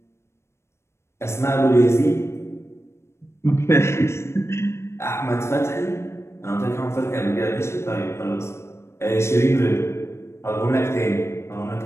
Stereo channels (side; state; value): right; late; 0.13 ms